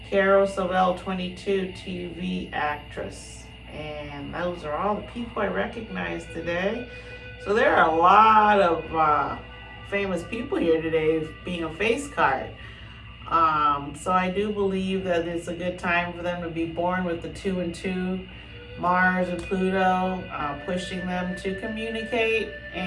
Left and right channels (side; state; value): both; identical; correlation 1.00